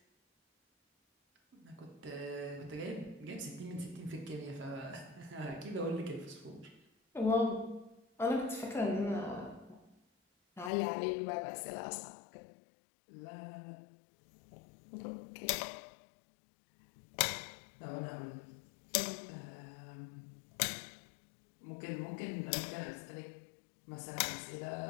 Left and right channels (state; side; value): drops out; right; at 10.7 s